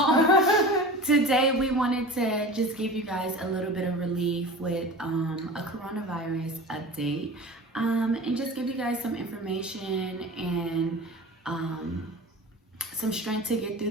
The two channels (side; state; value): both; normal; correlation 0.35